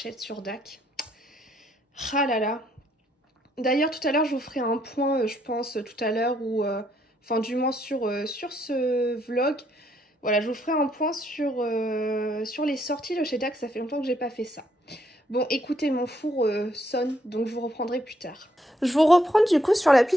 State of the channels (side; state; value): both; normal; correlation 0.72